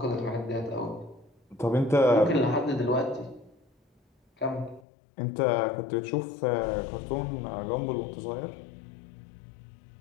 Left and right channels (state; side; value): drops out; right; at 4.9 s